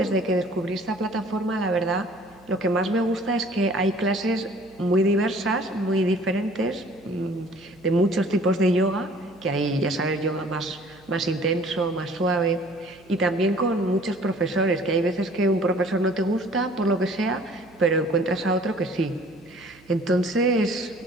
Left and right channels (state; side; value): noise; right; hum, 27 dB below the sound